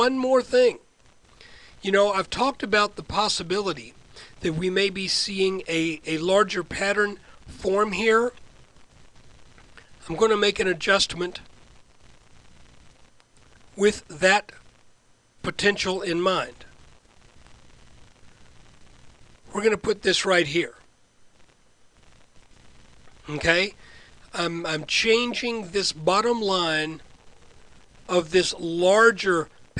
more thing. You know, I've talked about the possibility that we may be seeing a larger pattern form here. I'm going to make an adjustment with that potential in mind. We're going to put this right here. Okay? I'm changing this bottom line of this larger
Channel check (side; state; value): both; identical; correlation 1.00